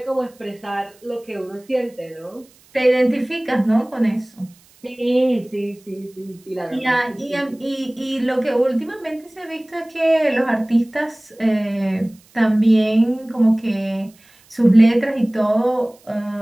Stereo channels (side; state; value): right; noise; hiss, 29 dB below the sound